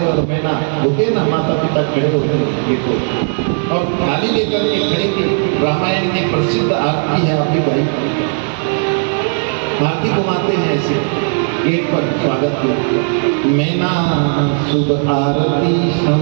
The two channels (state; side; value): silent; left; 59 dB below the other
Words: और मैना होते ना, माता पिता खड़े होते देखो, और थाली लेकर के खड़े की। रामायण की प्रसिद्ध आरती है आपकी भाई, आरती घुमाते हैं ऐसे गेट पर स्वागत के। मैना शुभ आरती